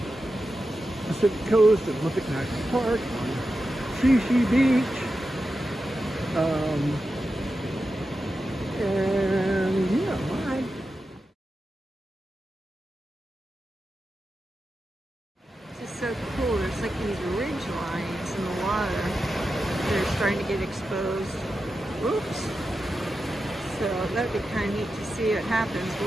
Pacific Coast at Olympic National Park, on Shishi Beach. And yeah, So cool. There's like these ridge lines in the water. They're starting to get exposed. Oops. So that'd be kind of neat to see what happens.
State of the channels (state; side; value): normal; both; correlation 0.90